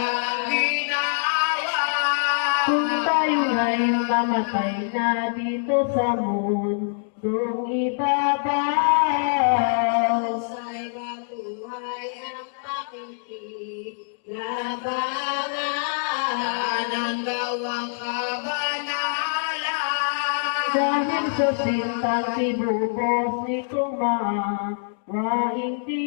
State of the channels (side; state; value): right; silent; digital silence